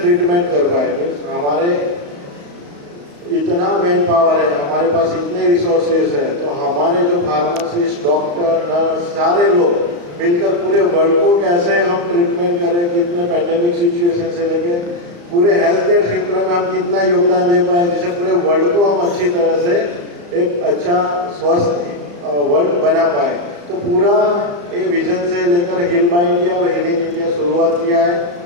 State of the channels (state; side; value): late; left; 35 ms